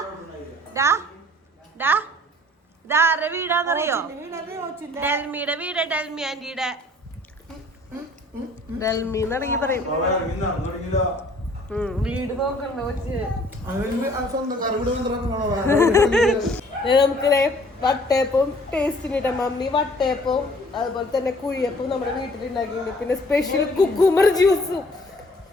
ഇതാരുടെ വീടാന്നറിയോ? ഡെൽമിയുടെ വീട്. ഡെൽമി ആന്റിയുടെ. ഡെൽമി എന്നിറങ്ങി പറയും. വീട് നോക്കണ്ട കൊച്ച്. നമുക്ക് വട്ടയപ്പവും ടേസ്റ്റിനിട്ട മമ്മി വട്ടയപ്പവും അതുപോലെ തന്നെ കുഴിയപ്പവും നമ്മുടെ വീട്ടിലുണ്ടാക്കിയിട്ടുണ്ട്. പിന്നെ സ്പെഷ്യൽ കുക്കുംബർ ജ്യൂസും.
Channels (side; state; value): both; normal; correlation 0.55